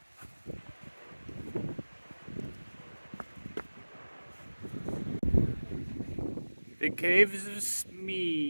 The caves of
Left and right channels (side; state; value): both; inverted; correlation -1.00